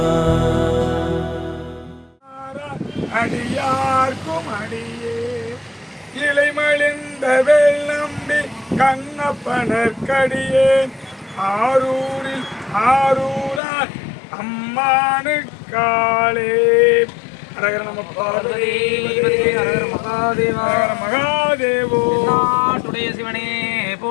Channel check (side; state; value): right; drops out; at 13.6 s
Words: அடியார்க்கும் அடியே இலைமழிந்த வெள்ளம்பி கண்ணப்பனற்கடியேன் ஆரூரில் ஆரூரார் அம்மானுக்காளே. அரகர நம பார்வதி மகாதேவோ. நாட்டுடைய சிவனே